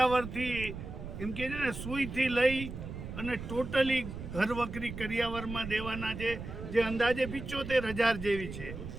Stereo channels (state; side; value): noise; right; rumble, 9 dB below the sound